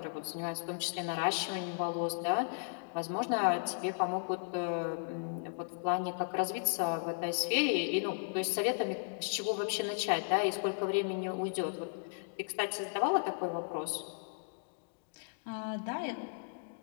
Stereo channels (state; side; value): silent; right; digital silence